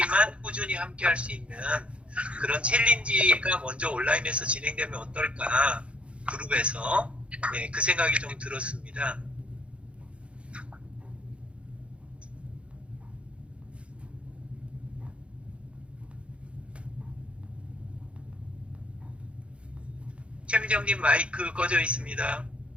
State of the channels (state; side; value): late; left; 0.060 ms